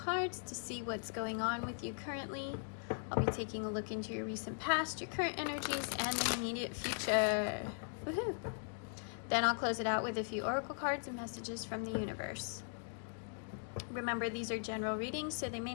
to see what's going on with you currently. I'll be taking a look into your recent past, your current energies, and the immediate future. Woohoo! Then I'll close it out with a few oracle cards and messages from the universe. Remember, these are general readings, so they may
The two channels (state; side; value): silent; right; digital silence